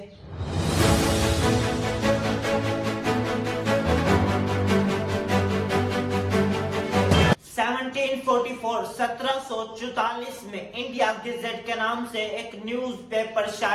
1744 में इंडिया गेजेट के नाम से एक न्यूज़पेपर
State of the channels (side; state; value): both; identical; correlation 1.00